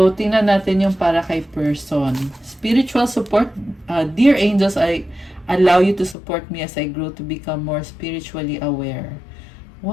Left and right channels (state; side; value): drops out; right; at 6.2 s